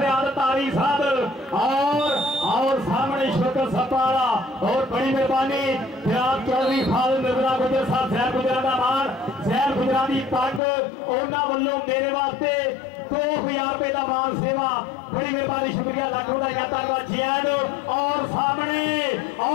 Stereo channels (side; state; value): right; drops out; at 10.6 s